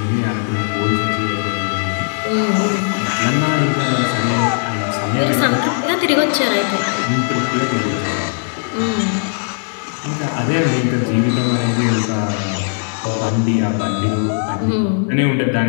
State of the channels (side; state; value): right; silent; digital silence